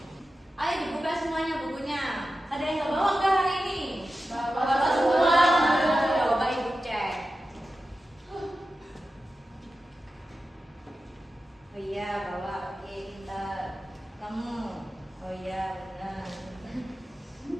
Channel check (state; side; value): normal; both; correlation 0.93